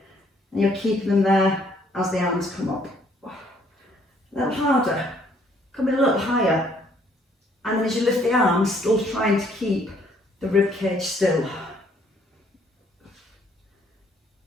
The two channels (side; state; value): both; normal; correlation 0.64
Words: And you're keeping them there as the arms come up. A little harder, come in a little higher. And then as you lift the arms, still trying to keep the rib cage still.